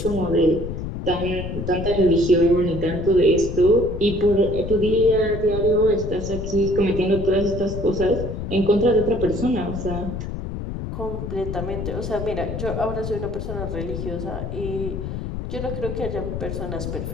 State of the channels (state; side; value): noise; left; rumble, 6 dB below the sound